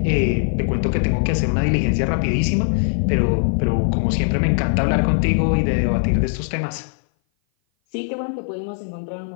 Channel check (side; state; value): right; silent; 58 dB below the other